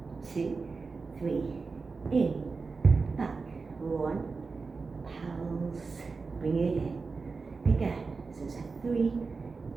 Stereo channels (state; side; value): quieter; left; 4.4 dB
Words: 2, 3, in, back, 1, pulse, bring it in, again. So it's a 3,